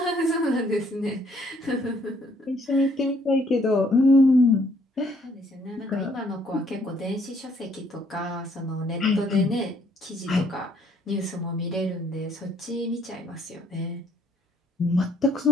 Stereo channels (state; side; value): normal; both; correlation 0.66